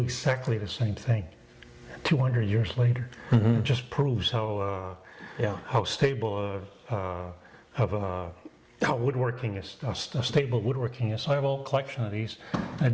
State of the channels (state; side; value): identical; both; correlation 1.00